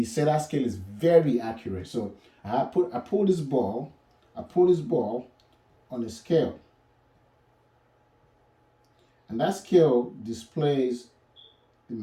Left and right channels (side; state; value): both; identical; correlation 1.00